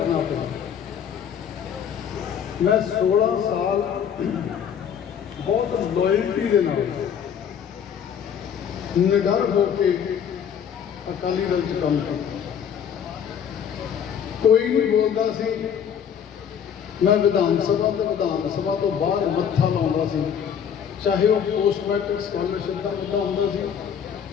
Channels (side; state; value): right; quieter; 8.1 dB